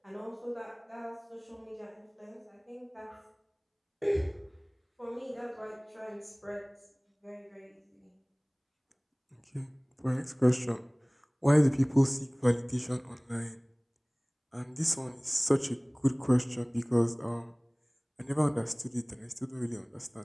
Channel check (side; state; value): both; identical; correlation 1.00